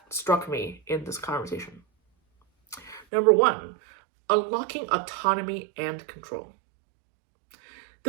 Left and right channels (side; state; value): left; drops out; at 3.1 s